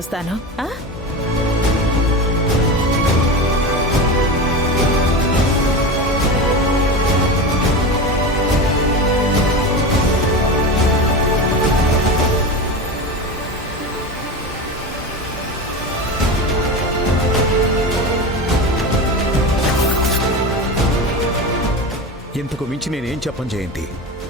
ఇంతకు మించి నేనేం చెప్పను జయంతి.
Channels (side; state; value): both; normal; correlation 0.24